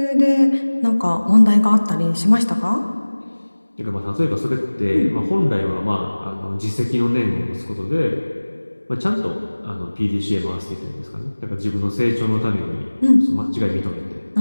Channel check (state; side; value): inverted; both; correlation -1.00